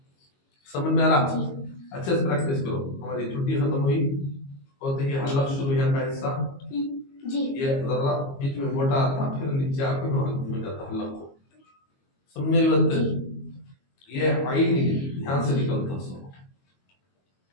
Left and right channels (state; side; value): late; right; 22 ms